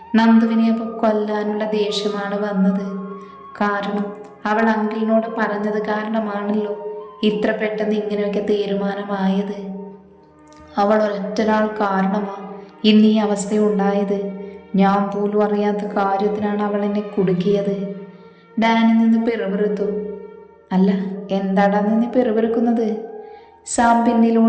നന്ദുവിനെ അപ്പോൾ കൊല്ലാനുള്ള ദേഷ്യമാണ് വന്നത്. കാരണം അവൾ അങ്കിളിനോട് പറഞ്ഞത് കാരണമാണല്ലോ ഇത്ര പെട്ടെന്ന് ഇങ്ങനെയൊക്കെ തീരുമാനമായത്. അവൾ ഒരൊറ്റൊരാൾ കാരണമാണ് ഇന്ന് ഈ അവസ്ഥയുണ്ടായത്. ഞാൻ പോലും അറിയാത്ത കാര്യത്തിനാണ് അവൾ എന്നെ കുടുക്കിയത്. ഡാനി നിന്ന് പിറുപിറുത്തു. അല്ല, എന്താടാ നിന്ന് പിറുപിറുക്കുന്നത്? സാം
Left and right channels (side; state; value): both; identical; correlation 1.00